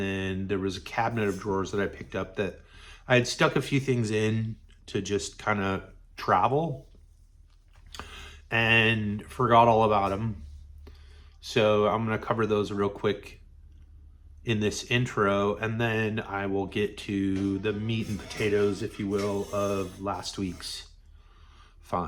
then there was a cabinet of drawers that I picked up that I had stuck a few things in to just kind of travel and forgot all about them. So I'm going to cover those real quick in this intro, and then I will get to the meat and potatoes, if you will, of last week's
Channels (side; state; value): both; identical; correlation 1.00